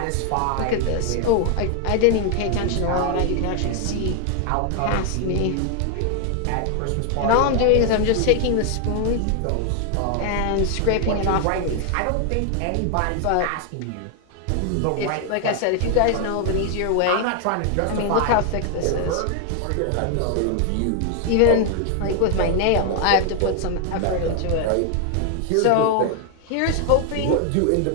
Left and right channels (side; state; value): both; different; correlation 0.00